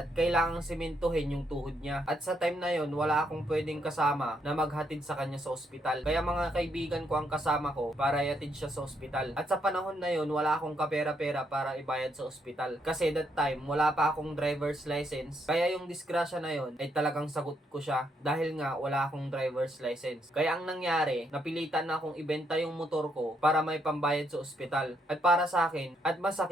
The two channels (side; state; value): both; normal; correlation 0.75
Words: kailangang simentohin yung tuhod niya. At sa time na yon wala akong pwedeng kasama na maghatid sa kanya sa ospital. Kaya mga kaibigan ko ang kasama ko para ihatid siya sa ospital. At sa panahon na yon wala akong kapera-pera para ibayad sa ospital. Kasi that time wala pa akong driver's license. Kaya yung disgrasya na yon ay talagang sagot ko siya dahil nga wala akong driver's license. Kaya ang nangyari, napilitan na akong ibenta yung motor ko para may pambayad sa ospital. At para sa akin, at